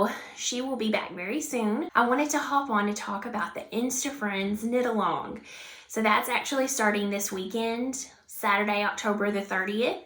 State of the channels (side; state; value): both; identical; correlation 1.00